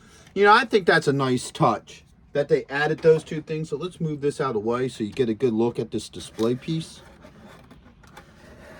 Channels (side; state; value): both; identical; correlation 1.00